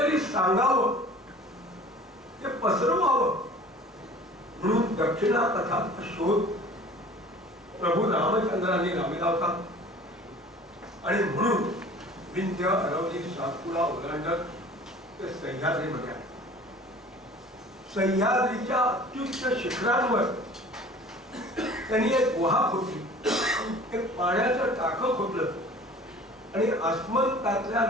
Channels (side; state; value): both; normal; correlation 0.45